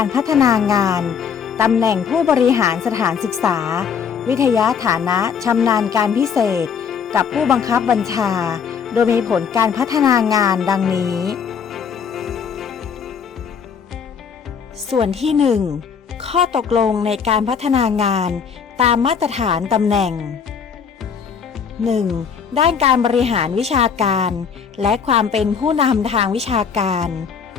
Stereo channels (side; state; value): right; quieter; 6.7 dB